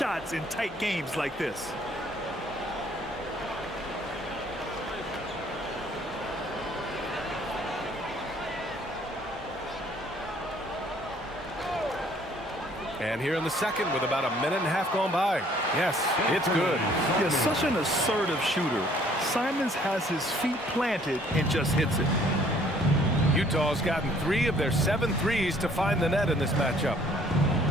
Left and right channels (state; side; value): normal; both; correlation 0.59